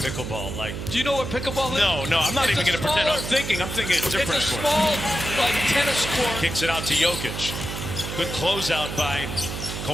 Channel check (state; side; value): noise; right; hum, 6 dB below the sound